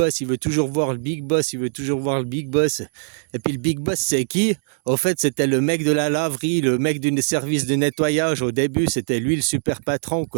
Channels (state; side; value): silent; left; digital silence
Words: Il veut toujours voir le big boss. Il veut toujours voir le big boss. Et puis le big boss, c'est qui? Au fait, c'était le mec de la laverie, le mec du service de nettoyage. Au début, c'était lui le super patron,